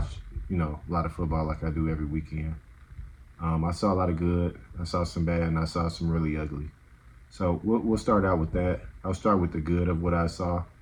a lot of football like I do every weekend. I saw a lot of good, I saw some bad, and I saw some really ugly. So we'll start out with that. I'll start with the good of what I saw.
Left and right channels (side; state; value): both; identical; correlation 1.00